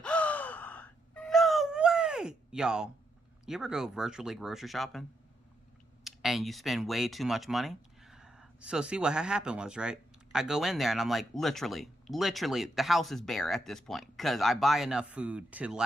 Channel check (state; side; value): normal; both; correlation 0.81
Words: oh, no way! Y'all, you ever go virtually grocery shopping, and you spend way too much money? So see, what happened was, right, I go in there, and I'm like, literally, the house is bare at this point, because I buy enough food to